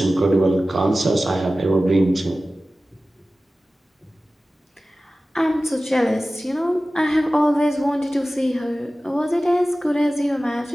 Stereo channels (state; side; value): normal; both; correlation 0.96